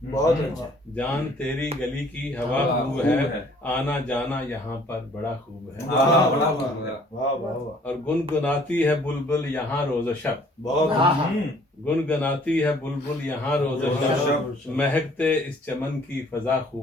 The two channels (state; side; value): normal; both; correlation 0.57